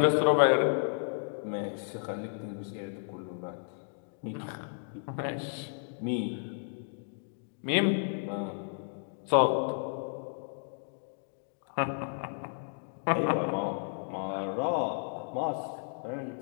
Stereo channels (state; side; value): silent; right; digital silence